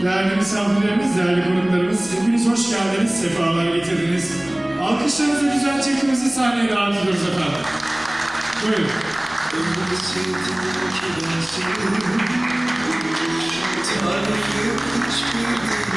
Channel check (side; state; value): left; noise; rumble, 26 dB below the sound